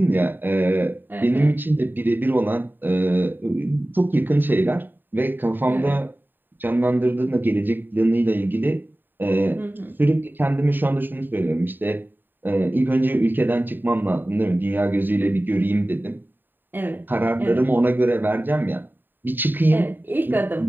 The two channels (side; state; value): left; late; 0.092 ms